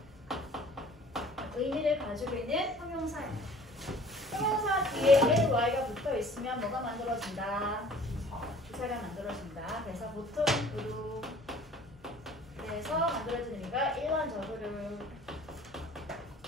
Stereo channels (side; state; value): both; normal; correlation 0.51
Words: 의미를 가지고 있는 형용사입니다. 형용사 뒤에 l, y가 붙어 있으면 뭐가 만들어진다? 부사가 만들어진다. 그래서 보통으로 그래서 만들어진 의미가 일반적으로 라는